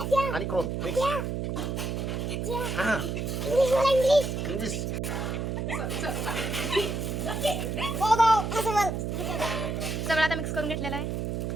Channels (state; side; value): noise; right; hum, 2 dB below the sound